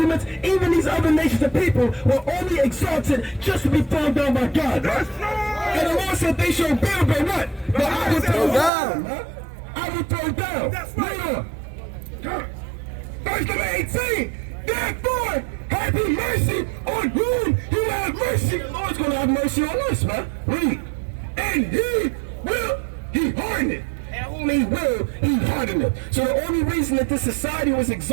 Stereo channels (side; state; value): left; drops out; at 8.7 s